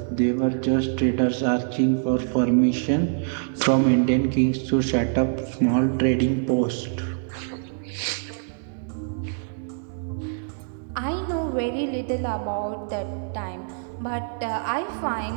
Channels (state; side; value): silent; left; 62 dB below the other